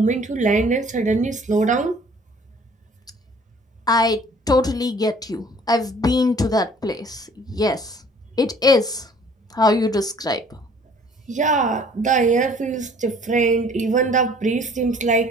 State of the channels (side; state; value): both; normal; correlation 0.55